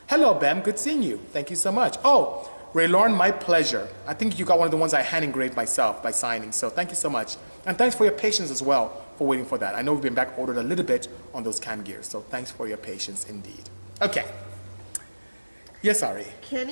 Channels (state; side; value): inverted; both; correlation -1.00